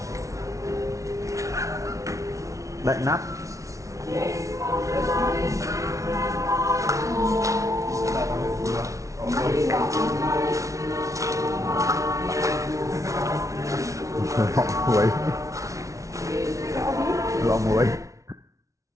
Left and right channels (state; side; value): late; left; 0.15 ms